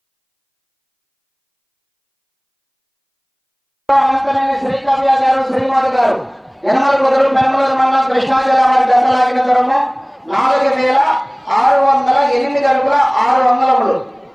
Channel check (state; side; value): identical; both; correlation 1.00